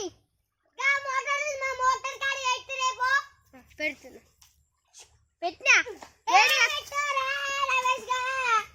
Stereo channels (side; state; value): both; identical; correlation 1.00